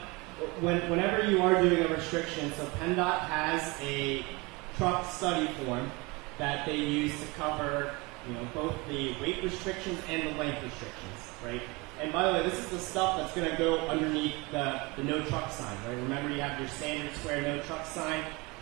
whenever you are doing a restriction, so PennDOT has a truck study form that they use to cover, both the weight restrictions and the length restrictions, right? And by the way, this is the stuff that's going to go underneath the no truck sign, right? Remember, you have your standard square no truck sign,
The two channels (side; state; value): left; quieter; 25.8 dB